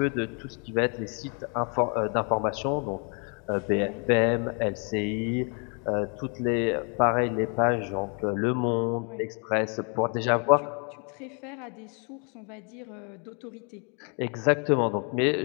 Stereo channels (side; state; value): right; quieter; 36.7 dB